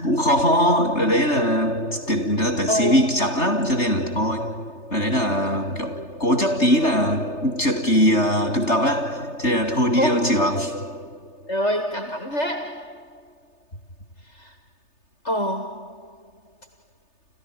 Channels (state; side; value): late; right; 3.3 ms